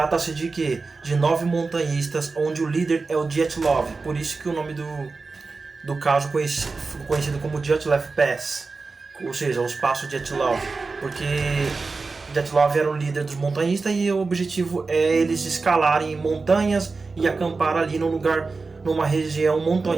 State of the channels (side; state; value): left; quieter; 4.1 dB